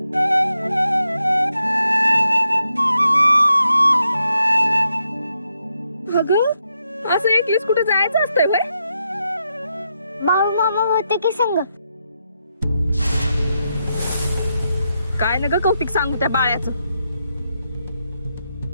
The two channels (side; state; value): both; inverted; correlation -0.83